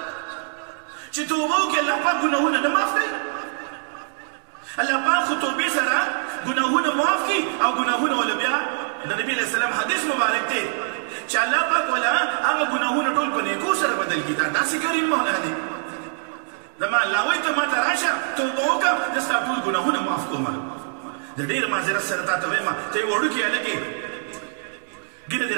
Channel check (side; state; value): left; silent; 60 dB below the other